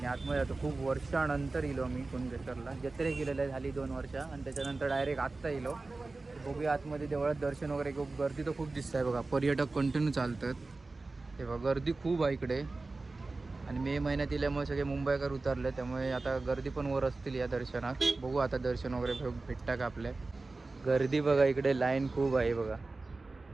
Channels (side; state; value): left; quieter; 3.5 dB